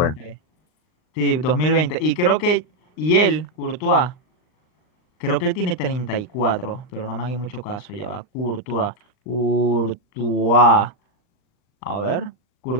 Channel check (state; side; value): late; right; 39 ms